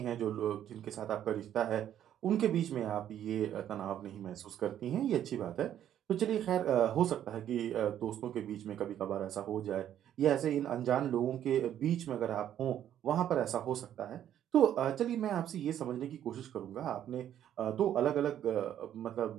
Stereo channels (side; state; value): left; quieter; 10.7 dB